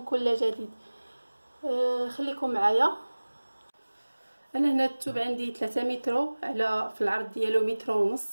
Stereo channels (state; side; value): inverted; both; correlation -1.00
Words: كل جديد. خليكم معايا. انا هنا الثوب عندي 3 متر على في العرض ديالو متر